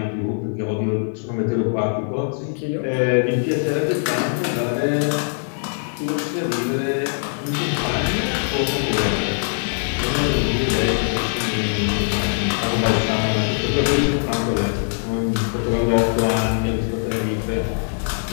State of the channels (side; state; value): right; silent; 62 dB below the other